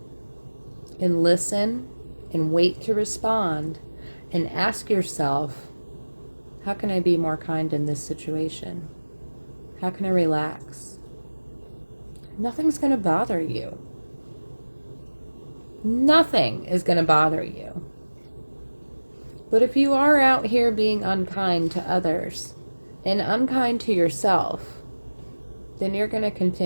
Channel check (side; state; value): both; inverted; correlation -1.00